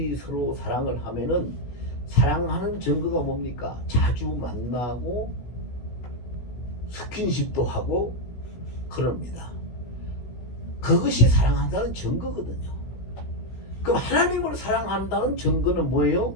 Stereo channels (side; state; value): right; late; 16 ms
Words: 서로 사랑을 하면은 사랑하는 증거가 뭡니까? 자주 만나고 스킨십도 하고 그럽니다. 그것이 사랑한다는 증거거든요. 그럼 하나님을 사랑한다는 증거는